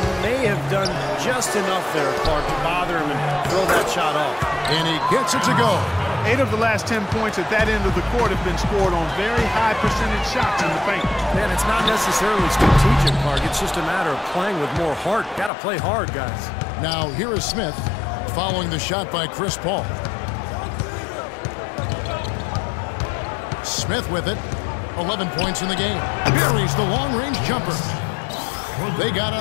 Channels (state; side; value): drops out; right; at 15.5 s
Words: may have done just enough there, Clark, to bother him and throw that shot off. And he gets it to go. 8 of the last 10 points at that end of the court have been scored on very high percentage shots in the paint. Man, it's not necessarily strategic, Clark. It's just a matter of playing with more heart. Got to play hard, guys. Now, here is Smith following the shot by Chris Paul. Smith with it. 11 points in the game. Buries the long-range jumper. They got